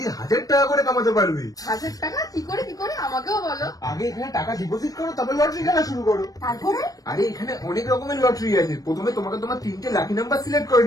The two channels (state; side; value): late; right; 0.18 ms